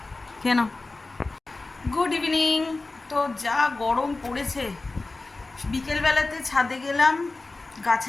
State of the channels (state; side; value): quieter; right; 3.3 dB